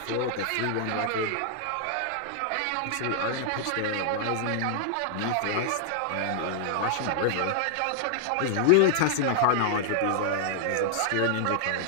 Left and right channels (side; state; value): both; different; correlation 0.00